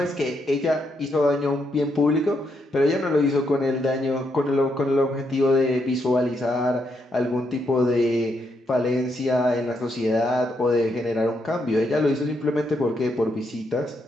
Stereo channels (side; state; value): both; normal; correlation 0.78